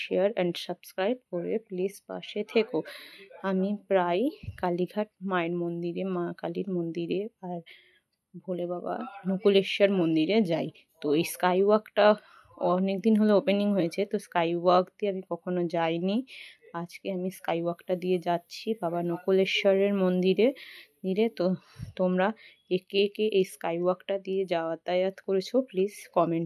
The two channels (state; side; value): identical; both; correlation 1.00